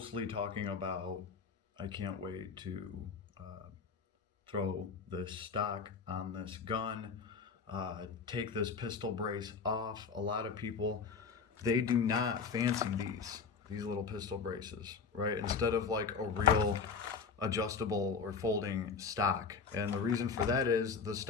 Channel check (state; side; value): quieter; right; 5.4 dB